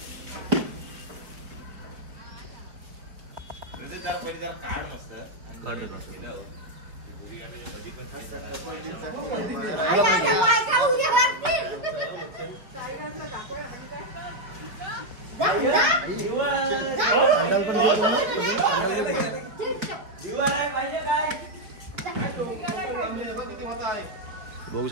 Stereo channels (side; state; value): left; late; 4.6 ms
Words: काढ रे बघू